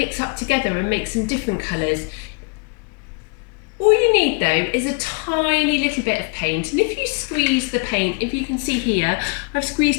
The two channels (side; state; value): right; quieter; 33.9 dB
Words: up together and make some different colours. All you need though is a tiny little bit of paint, and if you squeeze the paint, if you can see here, I've